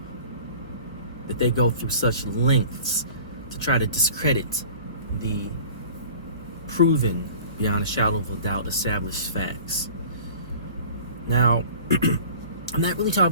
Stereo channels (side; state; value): both; inverted; correlation -0.44